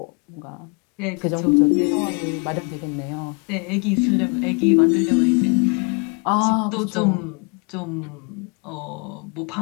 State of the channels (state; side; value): quieter; right; 34.9 dB